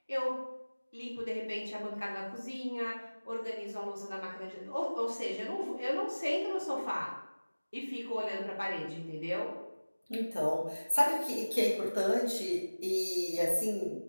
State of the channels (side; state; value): both; inverted; correlation -1.00